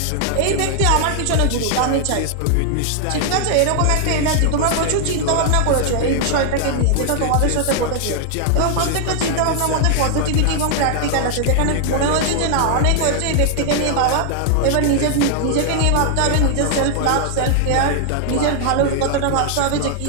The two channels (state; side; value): different; both; correlation 0.00